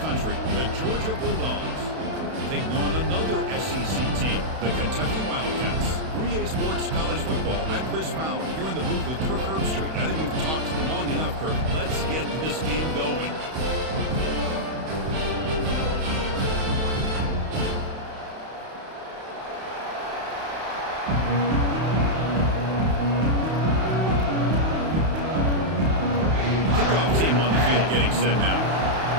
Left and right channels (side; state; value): left; late; 32 ms